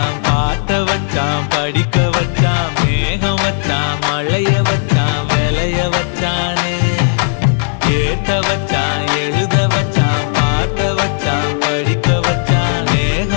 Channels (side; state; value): right; silent; digital silence